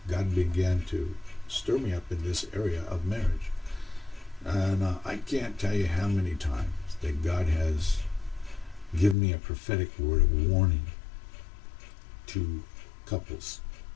God began to stir me up in this area of marriage. And I can't tell you how many times that God has given me a prophetic word of warning to couples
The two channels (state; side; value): drops out; right; at 9.2 s